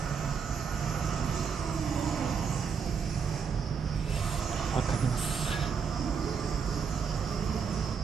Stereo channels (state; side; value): quieter; left; 6.2 dB